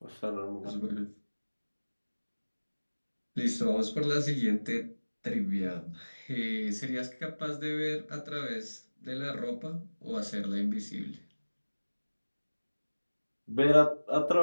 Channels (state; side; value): inverted; both; correlation -1.00